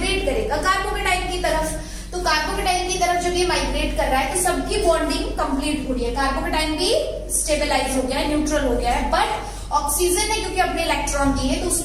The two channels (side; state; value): both; identical; correlation 1.00